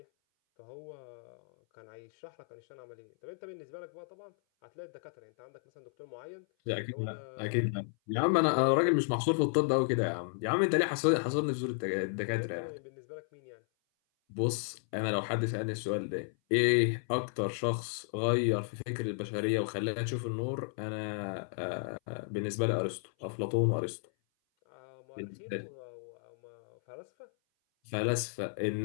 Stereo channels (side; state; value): right; silent; 55 dB below the other